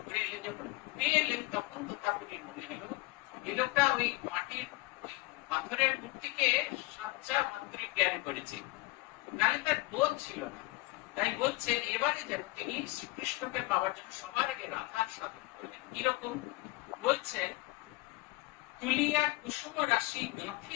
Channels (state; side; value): quieter; right; 22.2 dB